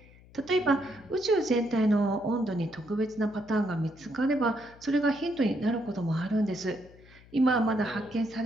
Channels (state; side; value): noise; left; hum, 24 dB below the sound